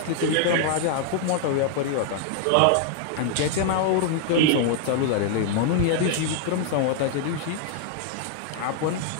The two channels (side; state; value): both; different; correlation 0.00